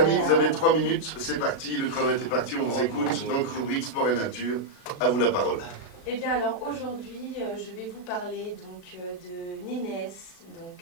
vous avez 3 minutes, c'est parti, le chrono est parti, on vous écoute. Donc, rubrique sport et nature, à vous la parole. Eh bien alors aujourd'hui, je vais vous parler donc de Nénès. Donc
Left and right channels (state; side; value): late; right; 36 ms